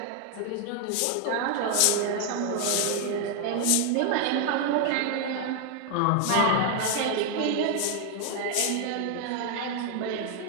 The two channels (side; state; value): both; different; correlation 0.01